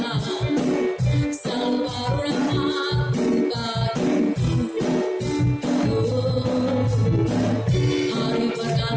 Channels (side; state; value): both; identical; correlation 1.00